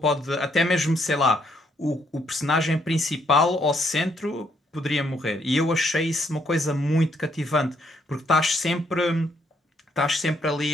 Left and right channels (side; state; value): both; normal; correlation 0.72